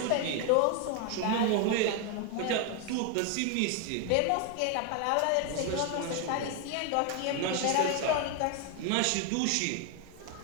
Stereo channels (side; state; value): both; different; correlation 0.01